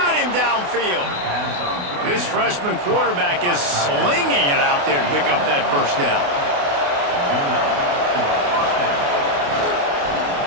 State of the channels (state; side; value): late; left; 28 ms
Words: him downfield. This freshman quarterback is slinging it out there to pick up that first down.